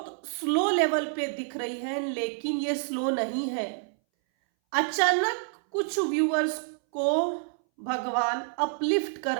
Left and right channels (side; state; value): left; silent; 59 dB below the other